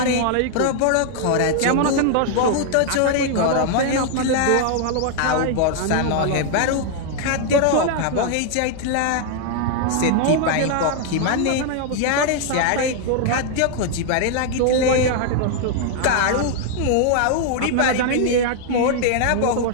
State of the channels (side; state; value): both; different; correlation 0.00